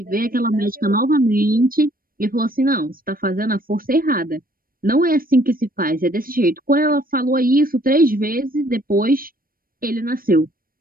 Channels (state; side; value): late; left; 0.41 ms